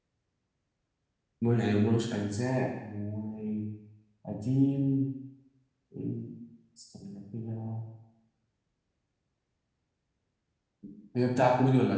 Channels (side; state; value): both; identical; correlation 1.00